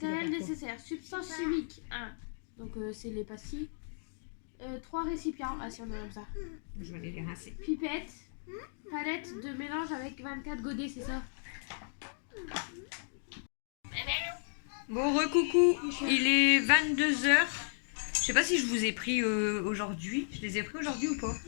dois Matériel faire quoi? nécessaire. Substance chimique 1. Donc, c'est les pastilles. 3 récipients. Ah, si, on a comme ça. Je vais aller les rincer. Pipette. Palette de mélange avec 24 godets, c'est ça? Bon, recoucou, il est 22h. Je sais pas si je vous ai pris aujourd'hui. Je les ai pris aujourd'hui ou pas?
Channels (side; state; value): right; silent; digital silence